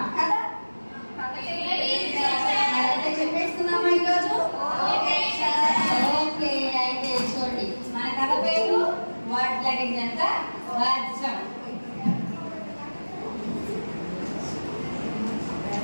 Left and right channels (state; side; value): inverted; both; correlation -1.00